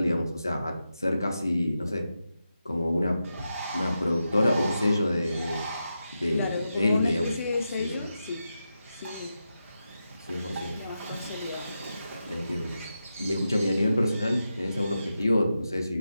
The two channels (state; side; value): inverted; both; correlation -0.88